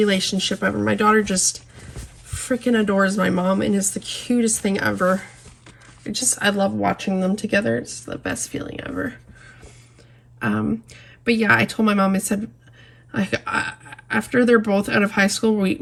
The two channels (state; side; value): identical; both; correlation 1.00